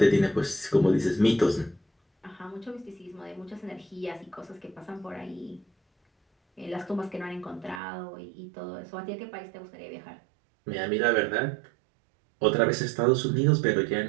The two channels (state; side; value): drops out; left; at 7.8 s